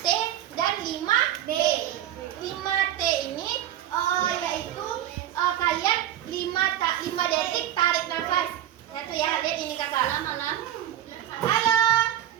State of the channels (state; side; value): quieter; left; 11.6 dB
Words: dan 5D. 5T ini yaitu kalian 5 detik tarik nafas. Ya tuh ya, lihat ini kakak. Malam. Halo.